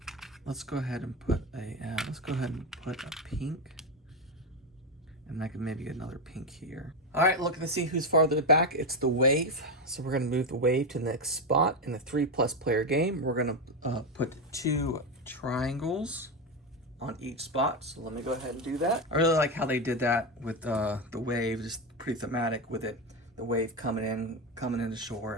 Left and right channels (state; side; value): normal; both; correlation 0.12